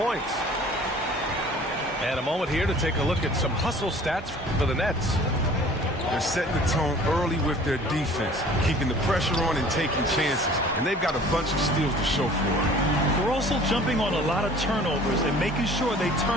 And a moment here to take a look at some hustle stats for the Nets. They're setting the tone early with their defense, keeping the pressure on and taking chances. And they've got a bunch of steals to show for it. They're also jumping on a lot of turnovers and making sure they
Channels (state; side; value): normal; both; correlation 0.48